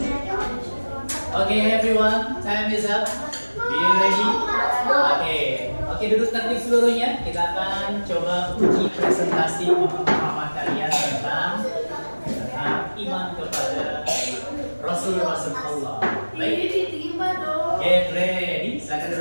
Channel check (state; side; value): inverted; both; correlation -1.00